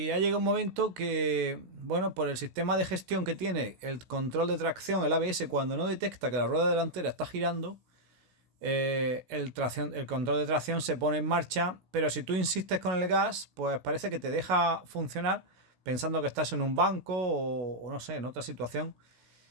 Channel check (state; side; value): late; left; 16 ms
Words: ha llegado un momento que, bueno, por el sistema de gestión que tiene el control de tracción, el ABS, cuando no detecta que la rueda delantera está girando, el control de tracción se pone en marcha, pero si tú insistes con el gas, pues parece que te deja funcionar pensando que estás en un banco o no sé, en otra situación.